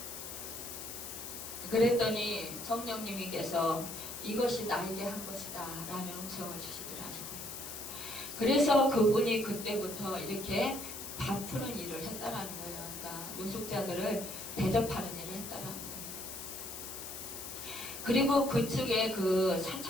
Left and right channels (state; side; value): noise; left; hiss, 8 dB below the sound